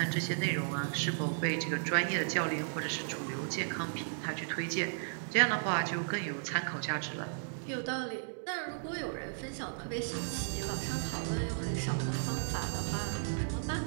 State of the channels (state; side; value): silent; left; digital silence